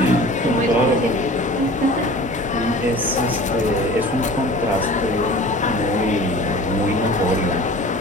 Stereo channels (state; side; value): normal; both; correlation 0.41